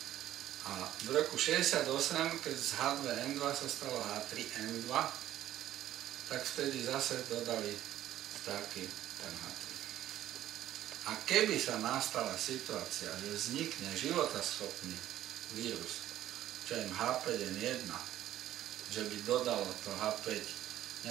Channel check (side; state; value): left; quieter; 12.9 dB